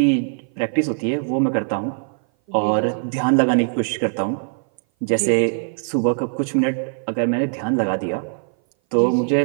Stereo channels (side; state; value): left; silent; 58 dB below the other